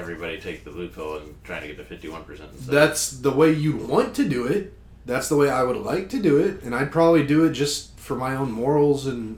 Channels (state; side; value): identical; both; correlation 1.00